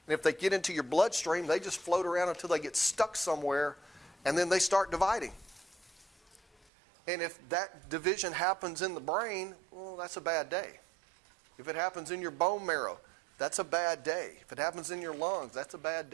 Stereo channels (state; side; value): drops out; left; at 6.7 s